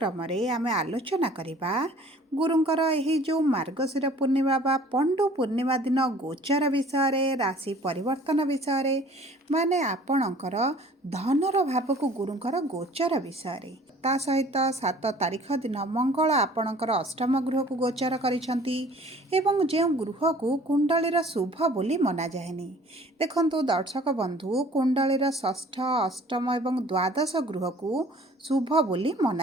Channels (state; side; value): normal; both; correlation 0.51